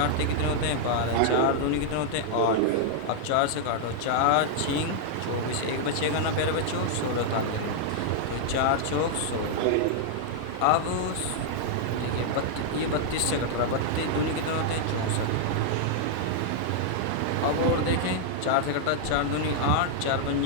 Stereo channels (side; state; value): both; different; correlation -0.01